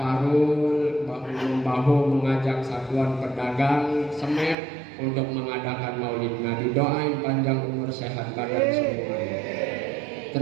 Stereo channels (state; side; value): drops out; left; at 4.5 s